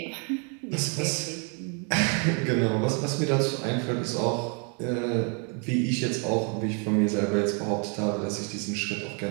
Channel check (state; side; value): quieter; left; 37.7 dB